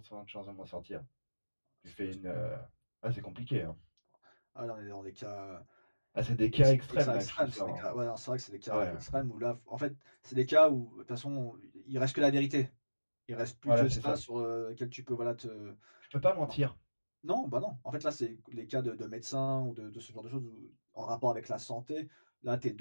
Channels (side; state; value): both; inverted; correlation -1.00